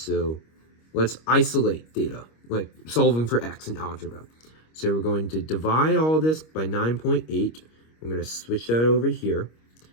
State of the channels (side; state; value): right; late; 25 ms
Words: let's isolate theta, like solving for x in algebra. So we're going to divide all this by 9.8. I'm going to switch that over here.